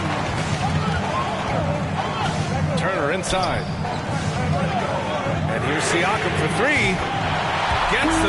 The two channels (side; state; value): both; identical; correlation 1.00